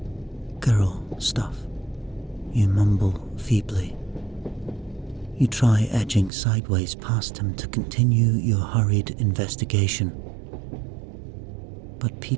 girl stuff," you mumble feebly. You try edging sideways past him to continue your hurried investigation, but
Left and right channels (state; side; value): drops out; left; at 6.3 s